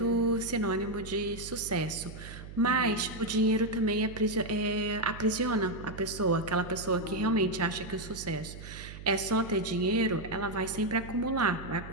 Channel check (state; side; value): noise; right; hum, 13 dB below the sound